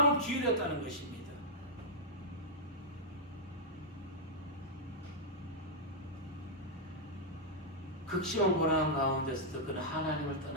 기울였다는 것입니다. 극심한 고난 가운데서도 그는 하나님을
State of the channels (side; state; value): both; normal; correlation -0.07